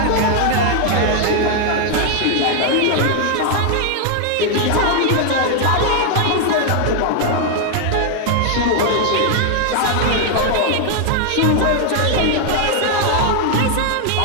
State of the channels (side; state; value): both; different; correlation 0.00